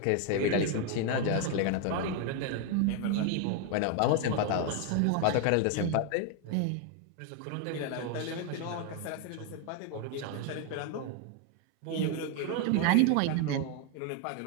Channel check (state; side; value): different; both; correlation 0.01